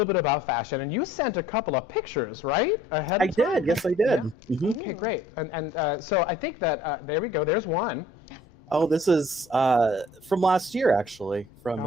bit about fashion. And you sent a couple of pictures, right? Ahead I of time? did. Yes, I did. Yeah. Mhm. Okay, great. And so I think that there we go. There's one. Oh, this is from last year, actually. From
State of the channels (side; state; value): both; normal; correlation 0.56